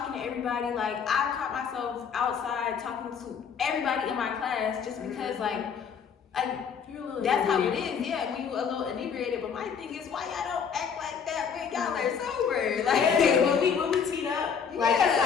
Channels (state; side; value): quieter; right; 6.8 dB